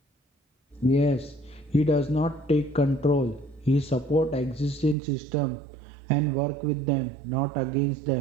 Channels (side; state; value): left; drops out; at 5.0 s